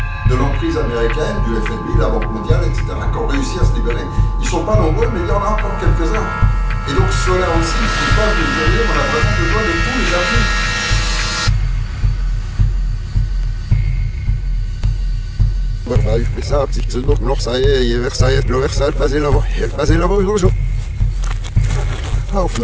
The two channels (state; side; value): identical; both; correlation 1.00